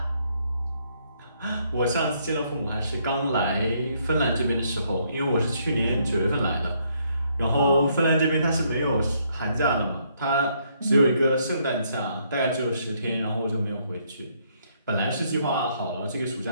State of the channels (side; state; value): both; inverted; correlation -0.71